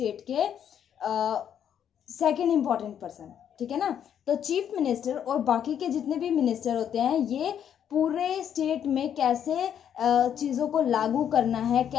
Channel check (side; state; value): right; quieter; 9.1 dB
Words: के सेकंड इंपॉर्टेंट पर्सन, ठीक है ना। तो चीफ मिनिस्टर और बाकी के जितने भी मिनिस्टर होते हैं, ये पूरे स्टेट में कैसे चीज़ों को लागू करना है,